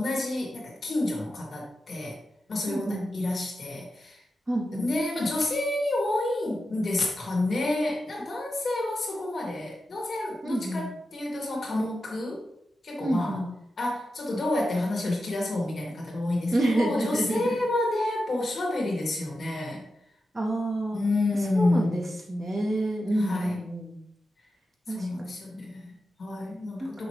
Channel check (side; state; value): both; normal; correlation 0.90